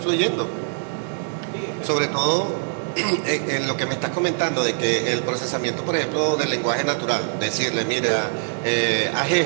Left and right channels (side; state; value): left; silent; digital silence